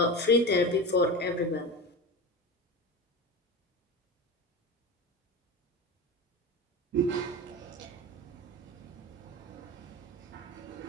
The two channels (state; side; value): normal; both; correlation 0.26